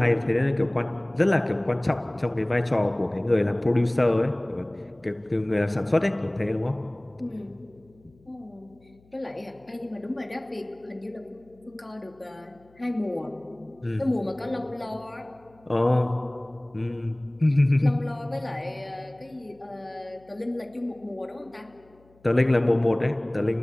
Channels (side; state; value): left; noise; hum, 30 dB below the sound